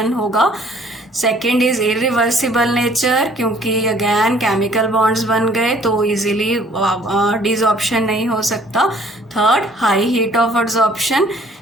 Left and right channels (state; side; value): normal; both; correlation 0.57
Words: होगा. Second is irreversible nature क्योंकि again chemical bonds बन गए तो इजीली डिसऑर्प्शन नहीं हो सकता. Third, high heat of adsorption.